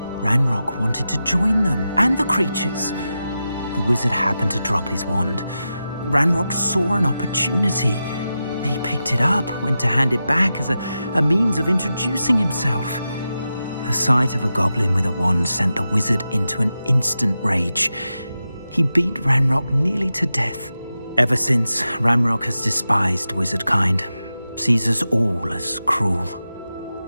Ranrock wanted to join them, and the creatures. The wizard happened to drop his wand. Ranrock saw an opportunity. He picked it up, went to hand it back as a means of introducing himself. The sight of a goblin with a wand sent the wizard into an instant rage. He beat Ranrock nearly to death. Ever since, Ranrock has despised wizardkind, sees us all as cruel.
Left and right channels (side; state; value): both; inverted; correlation -0.91